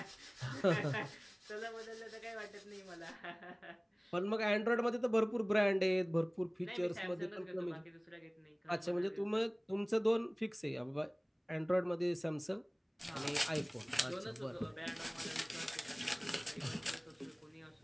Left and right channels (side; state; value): both; identical; correlation 1.00